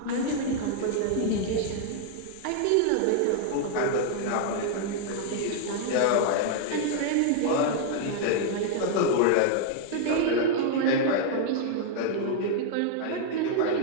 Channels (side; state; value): both; different; correlation 0.00